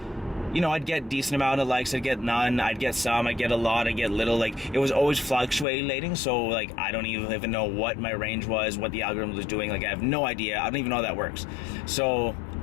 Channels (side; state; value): right; drops out; at 5.7 s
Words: you know, I'd get decent amount of likes, I'd get none, I'd get some, I'd get a lot, I'd get little. Like it was always fluctuating, so like I don't even know what my range was, what the algorithm was doing. Like I have no idea, I don't even know how that works. So